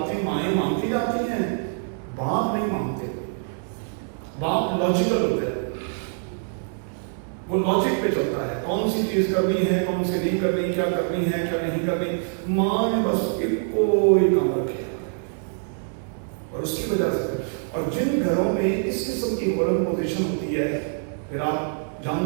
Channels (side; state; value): left; silent; 62 dB below the other